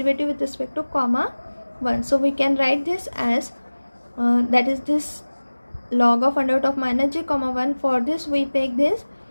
with respect to comma 1. So we can write this as that is this log of under root of minus g comma 1. For this we take this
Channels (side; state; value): both; inverted; correlation -1.00